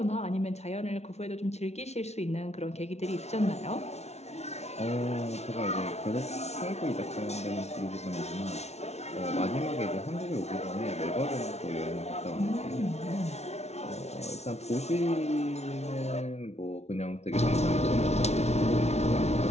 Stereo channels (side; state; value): right; late; 0.31 ms